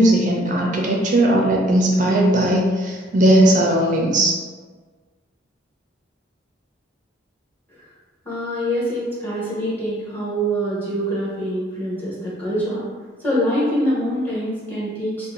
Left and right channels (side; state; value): both; normal; correlation 0.62